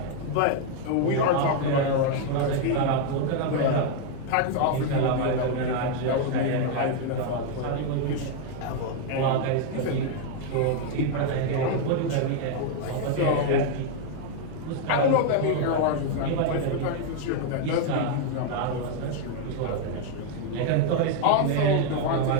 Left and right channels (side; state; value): both; different; correlation 0.00